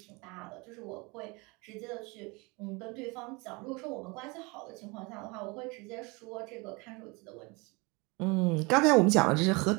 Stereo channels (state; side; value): quieter; left; 27.1 dB